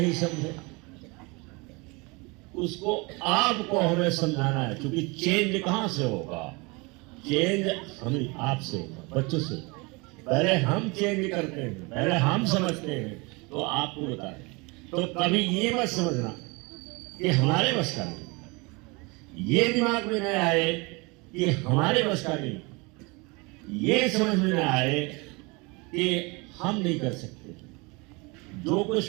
समझे, उसको आपको हमें समझाना है। क्योंकि चेंज कहां से होगा? चेंज हमें आपसे होगा, बच्चों से। पहले हम चेंज करते हैं, पहले हम समझते हैं, तो आपको बता रहे। तो कभी ये मत समझना कि हमारे बस का नहीं, ये दिमाग में न आए कि हमारे बस का नहीं, ये समझ में न आए कि हम नहीं कर सकते। जो कुछ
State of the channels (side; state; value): left; quieter; 27.2 dB